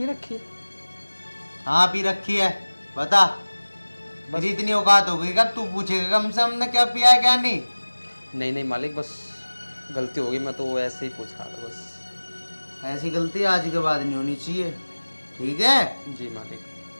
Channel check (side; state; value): both; inverted; correlation -1.00